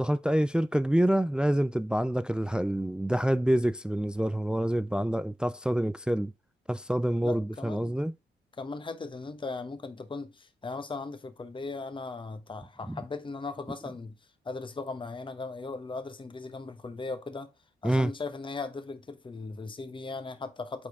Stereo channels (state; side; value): normal; both; correlation 0.95